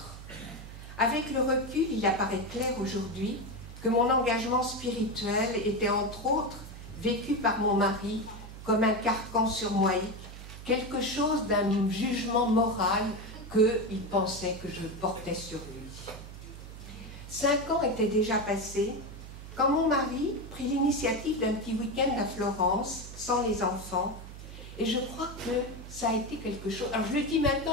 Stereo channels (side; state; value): right; noise; hum, 13 dB below the sound